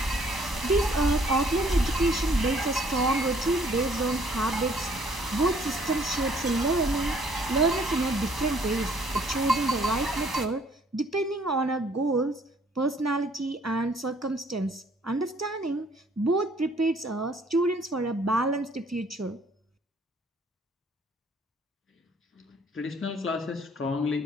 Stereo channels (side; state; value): both; normal; correlation 0.61